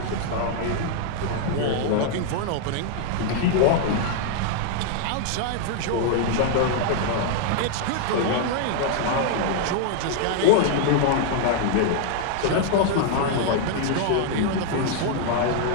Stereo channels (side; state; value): both; different; correlation 0.00